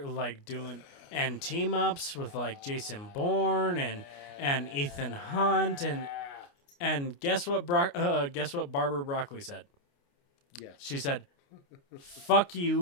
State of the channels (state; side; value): late; right; 29 ms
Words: and team ups with like Jason Bourne and Ethan Hunt and guess what Barbara Broccoli said? Yes. She said, "Fuck